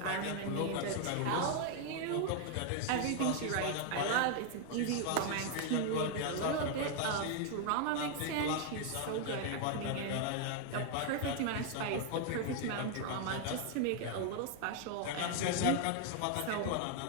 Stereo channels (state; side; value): different; both; correlation 0.00